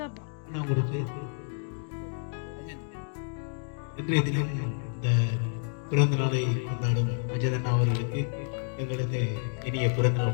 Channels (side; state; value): right; silent; 58 dB below the other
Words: கேட்போம். இன்றைய தினம் இந்த பிறந்த நாளை கொண்டாடும் அஜயன் அவர்களுக்கு எங்களது இனிய பிறந்தநாள்